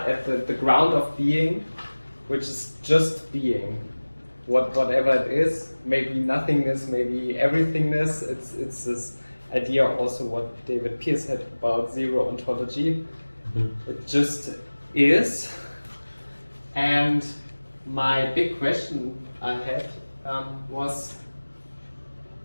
at the ground of being, which is just being, whatever it is, maybe nothingness, maybe everythingness. It's this idea also what David Pearce had about zero ontology. It just is. And my big question I had was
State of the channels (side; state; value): both; inverted; correlation -1.00